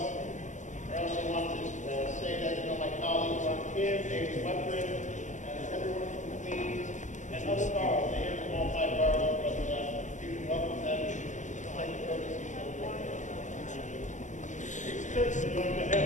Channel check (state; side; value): late; right; 0.35 ms